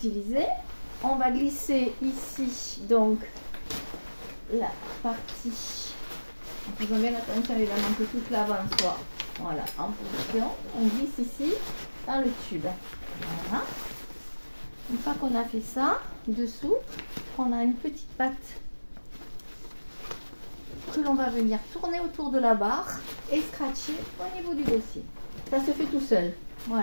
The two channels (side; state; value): both; inverted; correlation -1.00